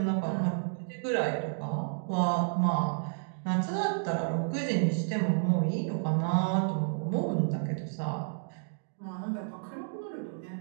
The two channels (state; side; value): silent; left; digital silence